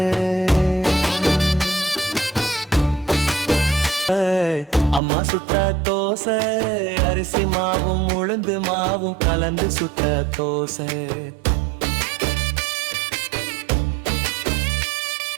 அம்மா சுட்ட தோசை, அரிசி மாவும் உளுந்து மாவும் கலந்து சுட்ட தோசை.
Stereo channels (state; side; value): drops out; left; at 5.0 s